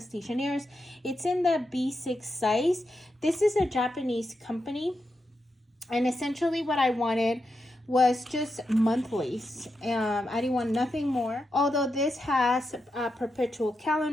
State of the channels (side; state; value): both; normal; correlation 0.86